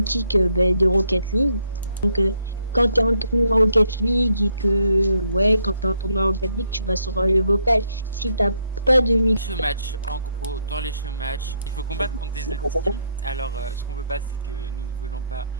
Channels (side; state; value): both; inverted; correlation -0.73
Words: ben, de Rocket League. Donc quand tu es en tournoi Rocket League et que, ouais, quand tu es en tournoi Rocket League, tu vas sur le vocal. Si t'as pas de micro. Show match, en gros, dans les show match, il faut combattre contre des autres teams. Alors, ce qu'on veut pas, c'est que nous ne voulons pas